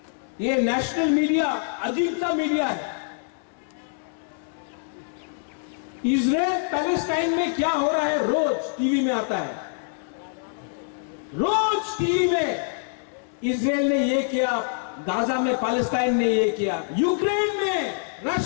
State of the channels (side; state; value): right; silent; digital silence